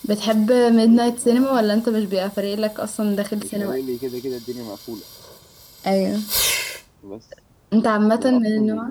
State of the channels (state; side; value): identical; both; correlation 1.00